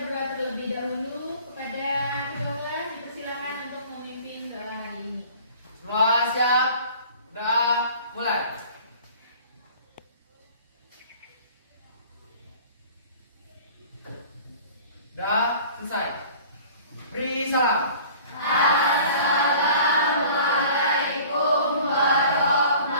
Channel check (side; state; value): both; inverted; correlation -0.46